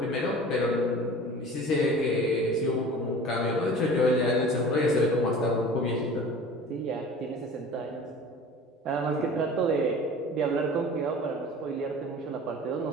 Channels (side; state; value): both; normal; correlation 0.41